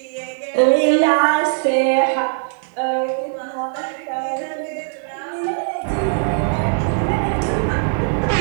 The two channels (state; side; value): silent; left; digital silence